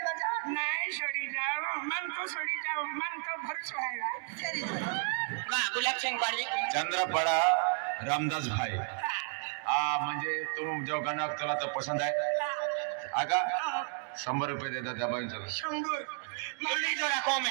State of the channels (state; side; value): silent; left; 56 dB below the other